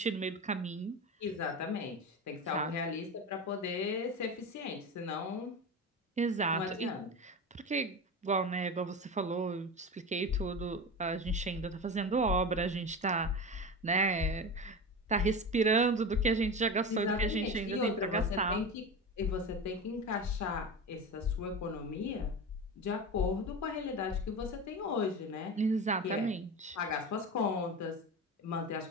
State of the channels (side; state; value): both; normal; correlation 0.25